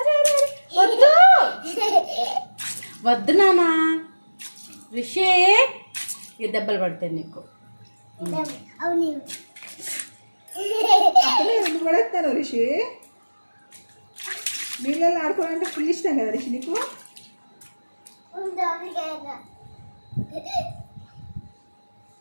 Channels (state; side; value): inverted; both; correlation -1.00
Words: వద్దు వద్దు నానా. రిషి, ఈ దెబ్బలు పడతాయి నీకు. ఎందుకు పడేస్తాను రిషి? నీళ్ళలో ఆడుకోవాలంటే ఫుల్ ఇష్టం కదా రిషి నీకు?